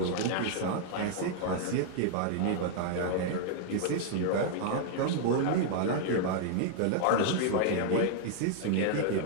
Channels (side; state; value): both; different; correlation -0.01